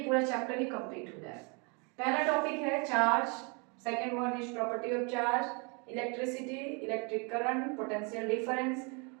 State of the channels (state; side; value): quieter; left; 33.1 dB